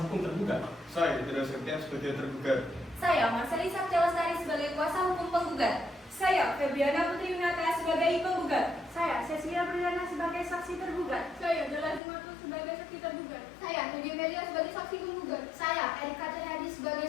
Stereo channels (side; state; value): right; drops out; at 12.0 s